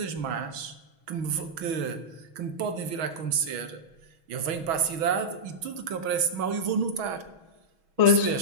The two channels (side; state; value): left; late; 6.2 ms